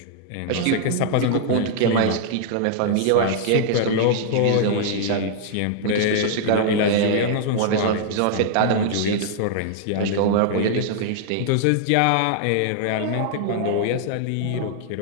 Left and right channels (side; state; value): both; different; correlation -0.01